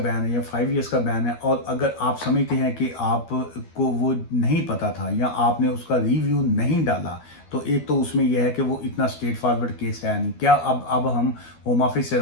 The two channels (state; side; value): late; right; 12 ms